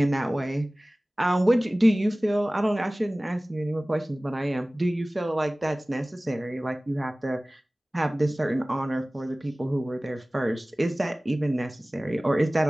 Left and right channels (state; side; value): normal; both; correlation 0.98